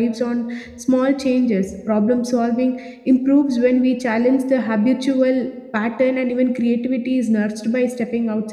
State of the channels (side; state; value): both; identical; correlation 1.00